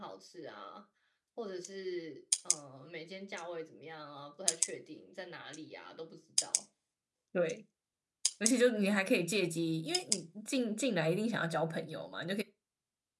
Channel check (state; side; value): identical; both; correlation 1.00